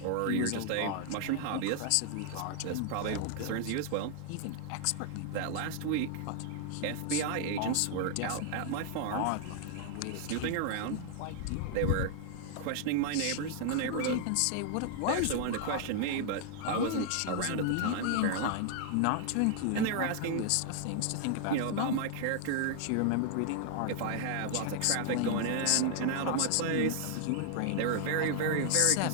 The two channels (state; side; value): different; both; correlation 0.00